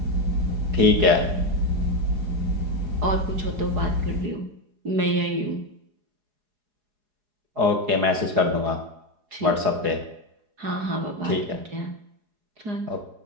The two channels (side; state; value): left; late; 4.8 ms